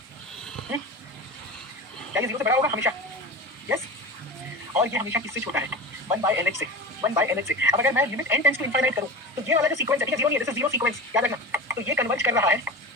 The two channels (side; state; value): both; normal; correlation 0.30